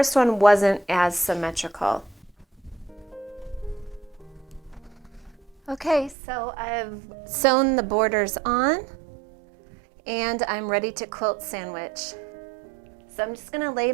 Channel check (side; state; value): left; drops out; at 6.2 s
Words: one wasn't as symmetrical. Okay, so I've sewn the borders on and I'm ready to quilt sandwich. So I'm just gonna lay